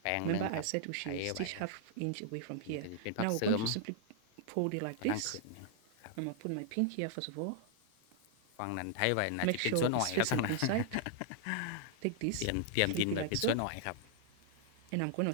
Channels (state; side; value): different; both; correlation 0.00